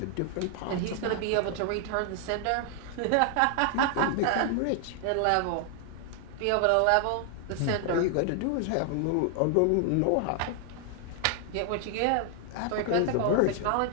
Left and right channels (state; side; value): different; both; correlation 0.00